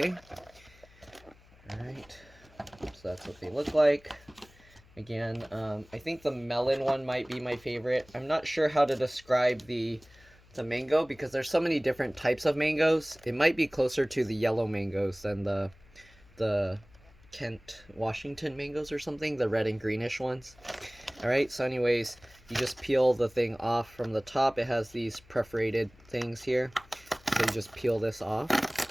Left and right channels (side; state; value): left; noise; hum, 26 dB below the sound